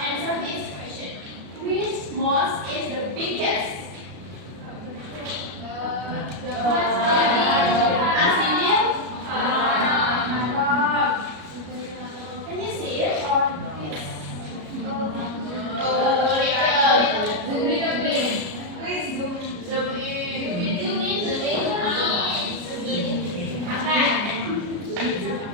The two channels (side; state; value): left; late; 33 ms